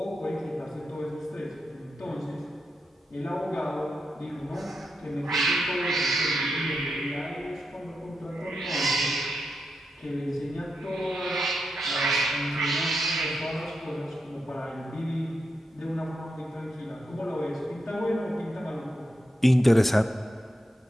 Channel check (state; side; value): normal; both; correlation 0.85